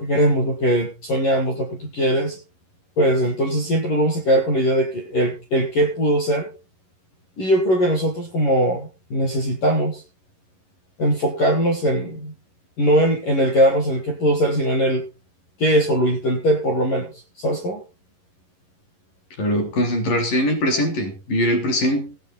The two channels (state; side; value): late; right; 11 ms